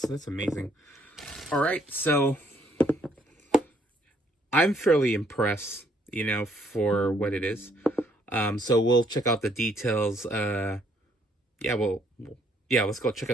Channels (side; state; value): both; normal; correlation 0.68